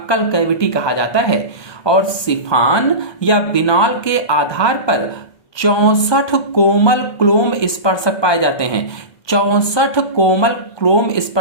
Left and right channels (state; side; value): late; right; 1.2 ms